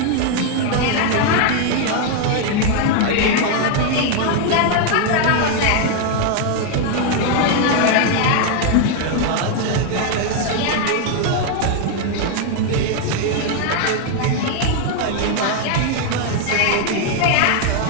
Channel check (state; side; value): different; both; correlation 0.00